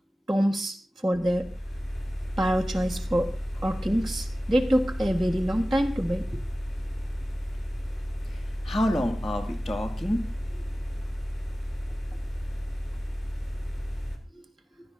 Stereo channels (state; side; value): normal; both; correlation 0.96